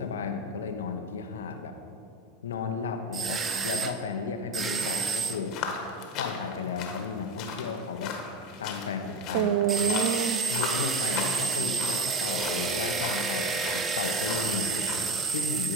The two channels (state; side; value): normal; both; correlation 0.24